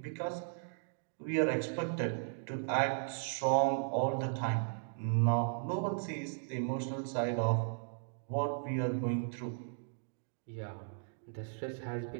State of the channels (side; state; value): left; silent; digital silence